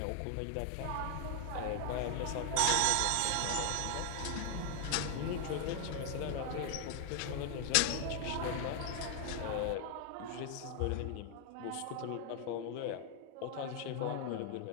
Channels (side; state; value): both; different; correlation 0.00